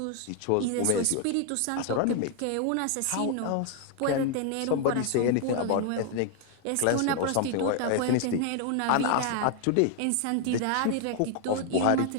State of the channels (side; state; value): both; different; correlation 0.00